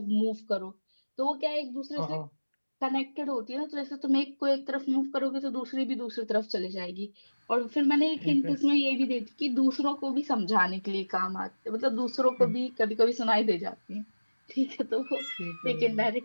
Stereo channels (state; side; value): inverted; both; correlation -1.00